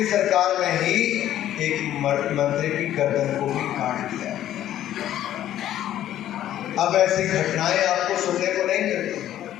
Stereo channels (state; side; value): quieter; right; 12.1 dB